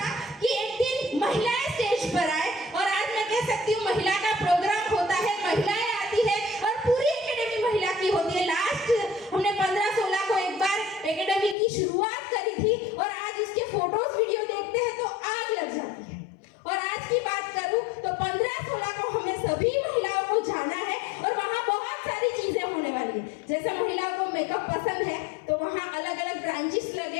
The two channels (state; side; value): drops out; right; at 11.6 s